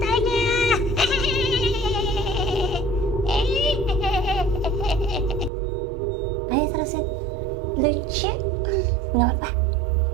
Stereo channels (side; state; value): left; drops out; at 5.5 s